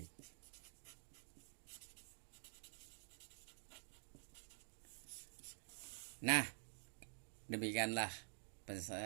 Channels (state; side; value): silent; left; digital silence